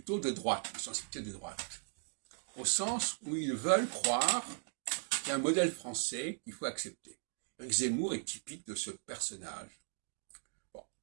de droite, de sensibilité de droite, au sens où ils veulent croire qu'il y a un modèle français qu'il faut accepter. Éric Zemmour est typique de ce personnage. Bon.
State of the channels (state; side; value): silent; left; 53 dB below the other